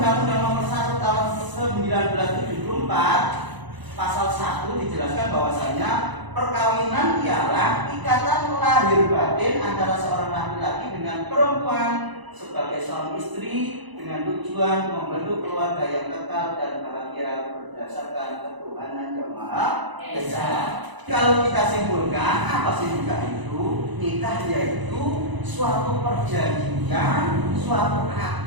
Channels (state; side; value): late; left; 1.0 ms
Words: Nomor 1 Tahun 1974 Pasal 1 dijelaskan bahwasanya perkawinan ialah ikatan lahir batin antara seorang laki-laki dengan perempuan sebagai suami istri dengan tujuan membentuk keluarga yang kekal dan bahagia berdasarkan ketuhanan yang Maha Esa. Kalau kita simpulkan, apa sih nikah itu? Nikah yaitu suatu perjanjian, suatu